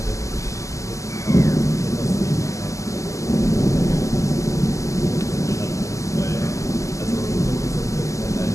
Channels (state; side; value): late; right; 0.16 ms